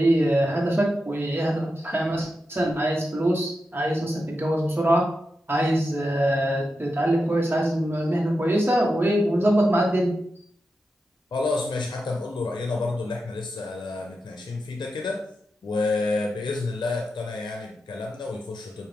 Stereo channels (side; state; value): both; normal; correlation 0.89